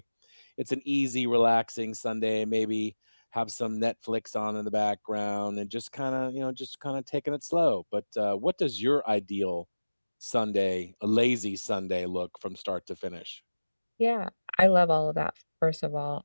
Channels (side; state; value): both; inverted; correlation -1.00